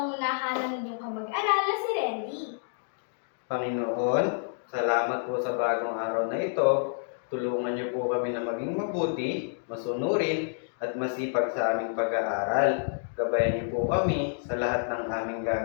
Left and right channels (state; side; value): silent; right; digital silence